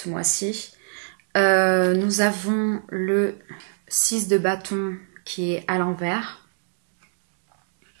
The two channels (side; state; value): left; silent; digital silence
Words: mois-ci. Nous avons le 6 de bâton qui est à l'envers